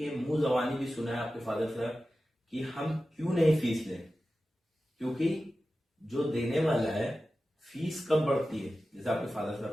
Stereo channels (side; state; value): both; normal; correlation 0.94